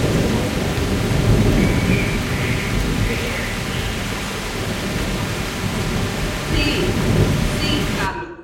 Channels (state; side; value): identical; both; correlation 1.00